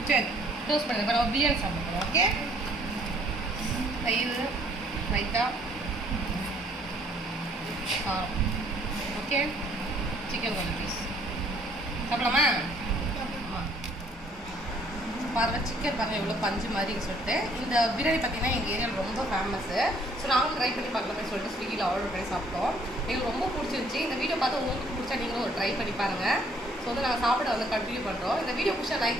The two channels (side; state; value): both; normal; correlation 0.63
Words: சரி க்ளோஸ் பண்ணுங்க. இப்போ நம்ம பிரியாணி சாப்பிடுறோம். ஓகே, தயிர் ரைத்தா ஓகே, சிக்கன் கொஞ்சம் பீஸ் சாப்பிடலாமா? பாருங்கள் சிக்கன் பாருங்கள் எவ்வளோ பஞ்சு மாதிரி சொல்லிட்டு. இந்த பிரியாணி பார்த்தீங்கன்னா எங்கள் ஏரியாவில் ரொம்ப ஃபேமஸ்ஸு. ஸோ நாங்களும் ட்ரை பண்ணி பார்க்கலாமே சொல்லிட்டு ஸ்விக்கியில் ஆர்டர் பண்ணி சாப்பிட்டோம். எங்களுக்கு ரொம்ப பிடிச்சிருந்துச்சி. இந்த வீடியோ பார்த்து உங்களுக்கு பிடிச்சா நீங்களும் ஒரு ட்ரை பண்ணி பாருங்கள். ஸோ வந்து நாங்கள் சாப்பிட வந்து கண்டினியூ பண்ணுறோம். இந்த வீடியோ பிடிச்சா